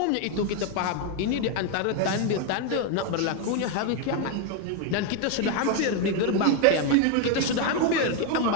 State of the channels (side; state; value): both; different; correlation 0.01